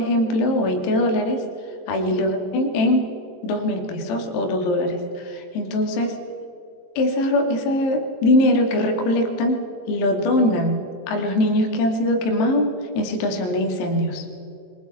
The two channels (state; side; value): late; right; 23 ms